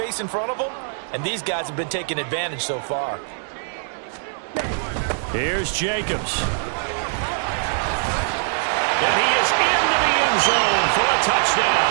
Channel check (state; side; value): silent; left; digital silence